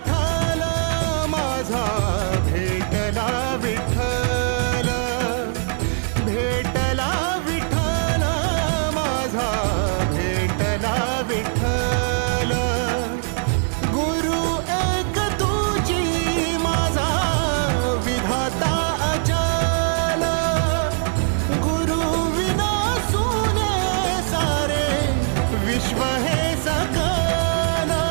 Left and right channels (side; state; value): left; silent; 62 dB below the other